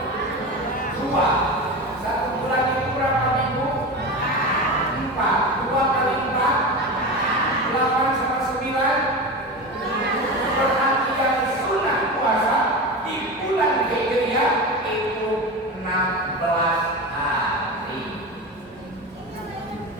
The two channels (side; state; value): both; normal; correlation 0.25